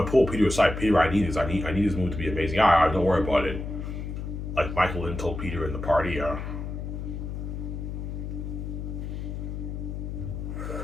pull Peter aside. Peter, I need this. I need this movie to be amazing. Yeah, don't worry about it. Like Michael Lynn told Peter in the party. Yeah.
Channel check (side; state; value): left; noise; hum, 6 dB below the sound